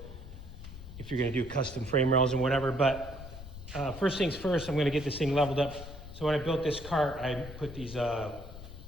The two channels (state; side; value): noise; left; rumble, 13 dB below the sound